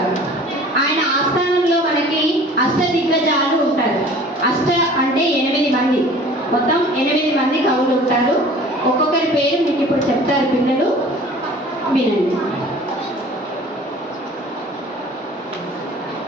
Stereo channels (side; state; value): both; normal; correlation 0.47